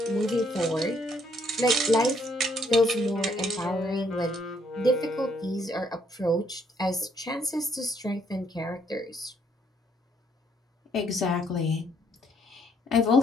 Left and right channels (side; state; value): both; normal; correlation 0.69